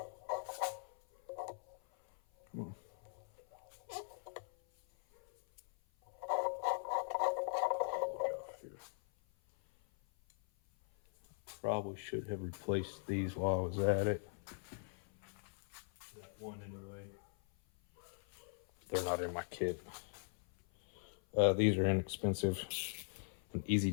Come on. Probably should have replaced these while I was at it. That one anyway. They're not in my kit. These are inexpensive and easy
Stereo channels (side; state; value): right; silent; 51 dB below the other